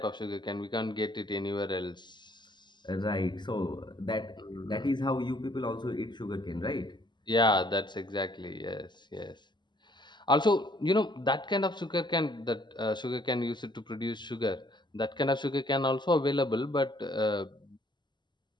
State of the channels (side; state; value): right; late; 0.22 ms